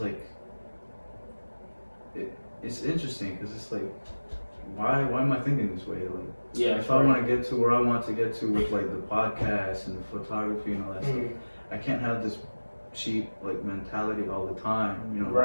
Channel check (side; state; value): both; inverted; correlation -1.00